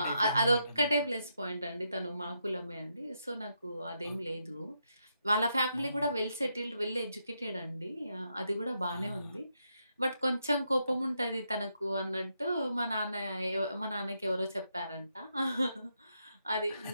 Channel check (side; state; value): both; inverted; correlation -0.81